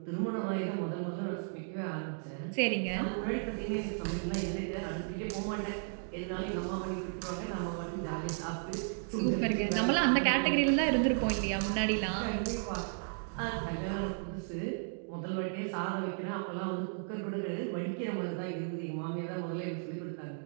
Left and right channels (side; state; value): left; silent; digital silence